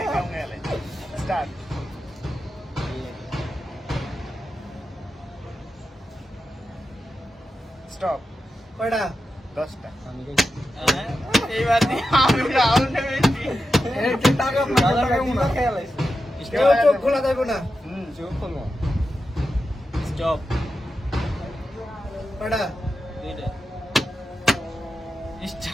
গেলে স্টার্ট। স্টপ। কয়টা? 10টা। আমি গেছি। হ্যাঁ, এইবার দিয়ে আমি রাউন্ড হয়েছি। খেয়াল আছে। কেউ চোখ খোলা যাবে না। চোখ খুলবো। স্টপ, কয়টা? দুইটা।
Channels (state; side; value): normal; both; correlation 0.90